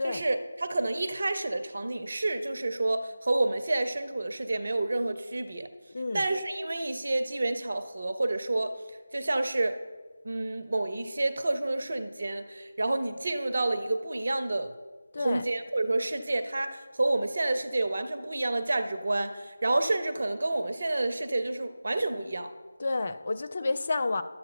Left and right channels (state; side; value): inverted; both; correlation -0.97